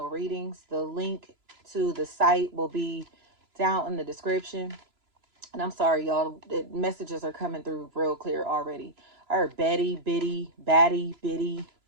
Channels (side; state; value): left; late; 3.0 ms